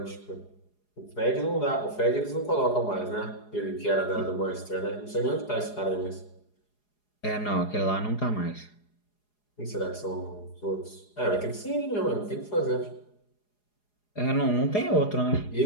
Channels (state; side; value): late; right; 4.8 ms